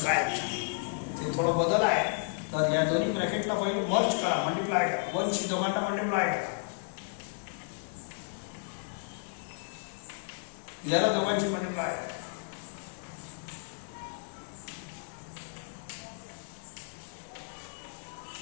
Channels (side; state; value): right; silent; digital silence